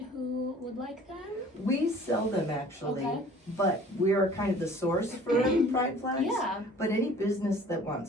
who would like them? We sell them actually, Okay. but we are kind of the source for pride flags. Yeah. But any business that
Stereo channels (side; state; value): both; normal; correlation 0.50